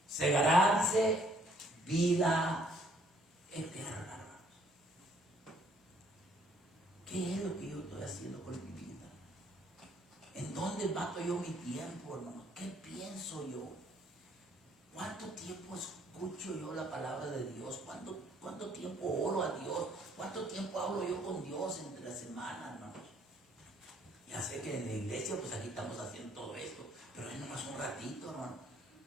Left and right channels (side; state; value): both; normal; correlation 0.64